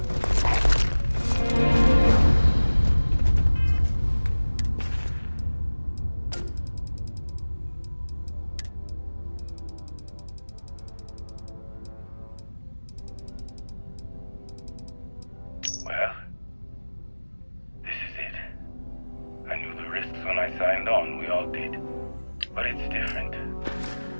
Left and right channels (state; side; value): inverted; both; correlation -1.00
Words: Well, this is it. I knew the risks when I signed on, we all did. But it's different.